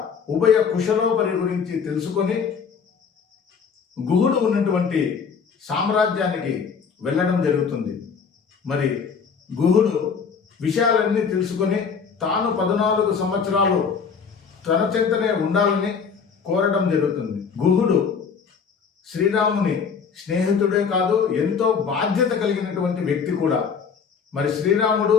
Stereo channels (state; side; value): quieter; right; 6.1 dB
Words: ఉభయ కుశలోపరి గురించి తెలుసుకొని గుహుడు ఉన్నటువంటి సామ్రాజ్యానికి వెళ్ళడం జరుగుతుంది. మరి గుహుడు విషయాలన్నీ తెలుసుకొని తాను 14 సంవత్సరాలు తన చెంతనే ఉండాలని కోరడం జరుగుతుంది. గుహుడు శ్రీరాముని స్నేహితుడే కాదు, ఎంతో బాధ్యత కలిగినటువంటి వ్యక్తి కూడా. మరి శ్రీరాముడు